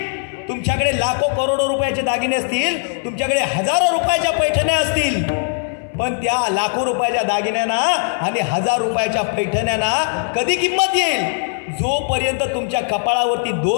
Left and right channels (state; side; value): silent; right; digital silence